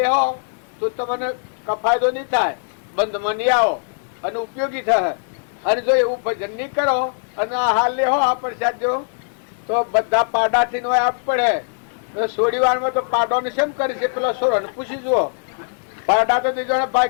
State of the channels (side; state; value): right; silent; digital silence